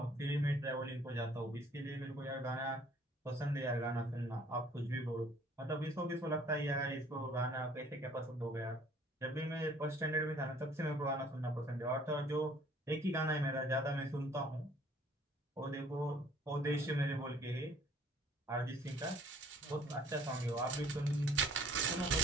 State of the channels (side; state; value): both; normal; correlation 0.56